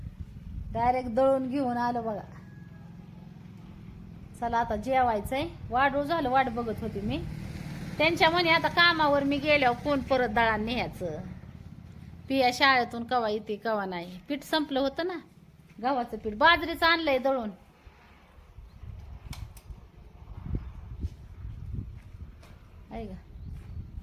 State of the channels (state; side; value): identical; both; correlation 1.00